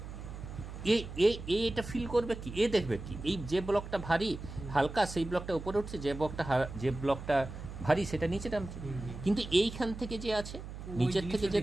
এটা ফিল করবে কি, এ দেখবে কি এই যে ব্লকটা ভারী হালকা সেই ব্লকটা উপরে উঠছে, যে ব্লকটা ভারী সেটা নিচে নামছে। কিন্তু এইখান থেকে যে আছে নিচের থেকে যে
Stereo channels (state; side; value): noise; right; hum, 10 dB below the sound